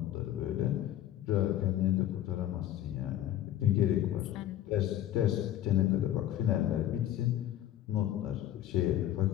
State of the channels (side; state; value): right; quieter; 12.5 dB